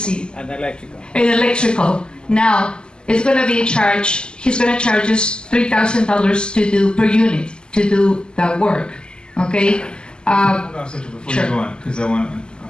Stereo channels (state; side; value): late; right; 0.048 ms